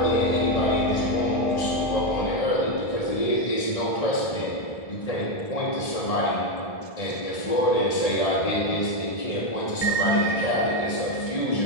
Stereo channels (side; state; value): right; late; 1.8 ms